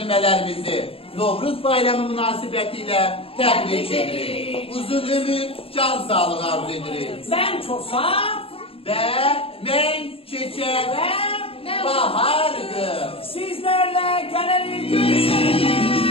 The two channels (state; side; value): late; right; 0.27 ms